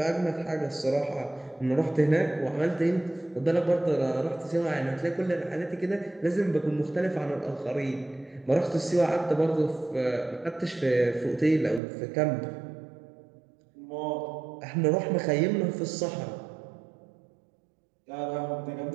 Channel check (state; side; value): drops out; left; at 11.8 s